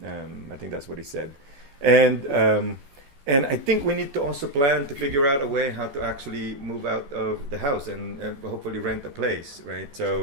I think that's what he said. And I think we need to also plan to figure out a way how to actually move out of the house and hopefully rent a place, right?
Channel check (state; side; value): late; left; 14 ms